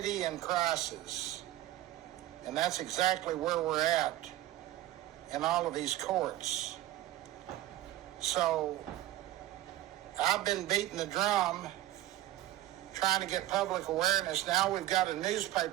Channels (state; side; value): quieter; left; 14.8 dB